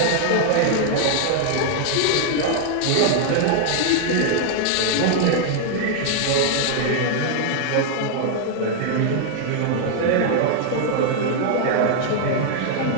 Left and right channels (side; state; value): both; different; correlation 0.00